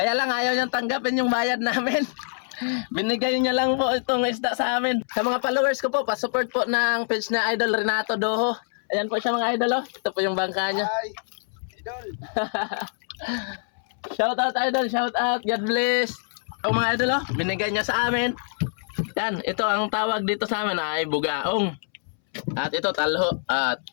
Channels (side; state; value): right; silent; 62 dB below the other